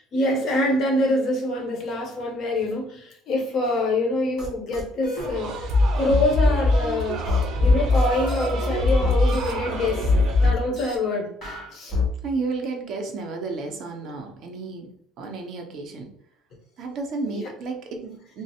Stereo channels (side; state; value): both; normal; correlation 0.69